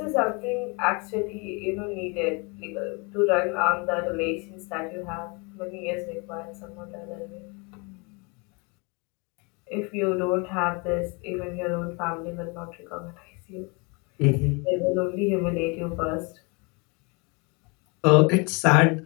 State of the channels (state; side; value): quieter; right; 30.6 dB